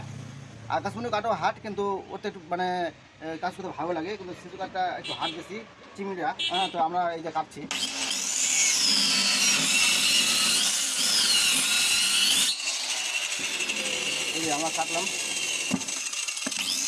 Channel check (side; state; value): both; identical; correlation 1.00